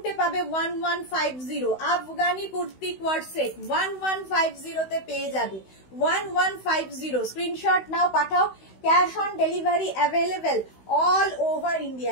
পাবে 1150 আফগানি কুর্তি কোয়ার্ড সেট 1150 তে পেয়ে যাবে। 1150 স্ক্রিনশট নাও, পাঠাও, cash on delivery available all over India.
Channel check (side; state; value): right; late; 16 ms